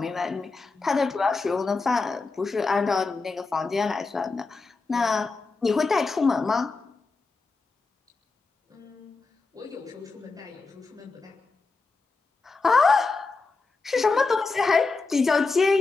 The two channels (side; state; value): right; quieter; 4.0 dB